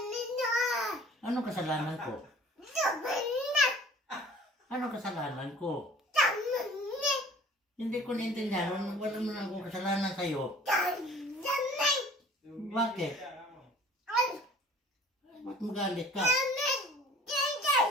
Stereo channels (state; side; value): normal; both; correlation 0.50